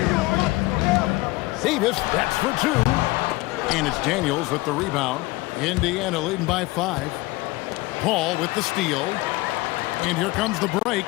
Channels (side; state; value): right; quieter; 21.3 dB